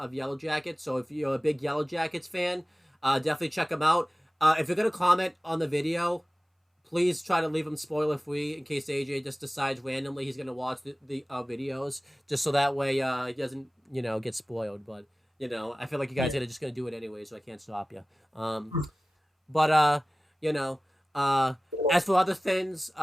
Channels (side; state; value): both; normal; correlation 0.97